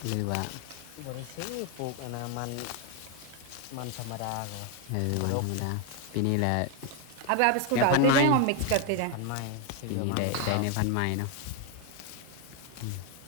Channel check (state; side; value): different; both; correlation 0.01